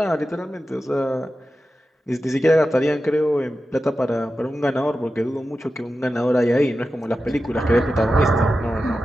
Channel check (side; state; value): both; normal; correlation 0.92